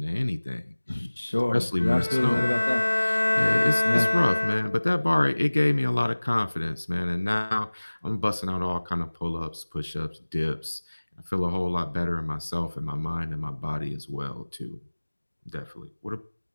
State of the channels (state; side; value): inverted; both; correlation -1.00